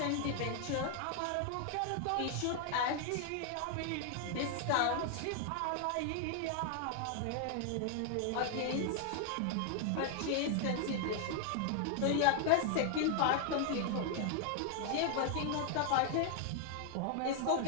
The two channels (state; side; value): different; both; correlation 0.00